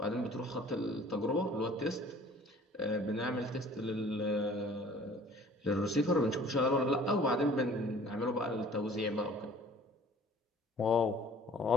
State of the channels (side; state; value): both; normal; correlation 0.51